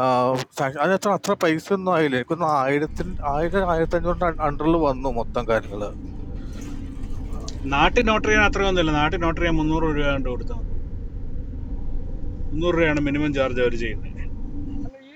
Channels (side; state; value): both; identical; correlation 1.00